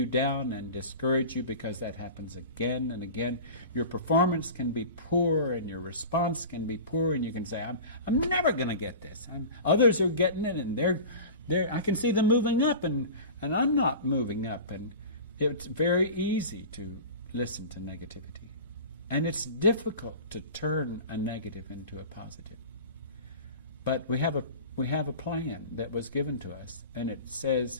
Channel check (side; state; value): both; inverted; correlation -0.35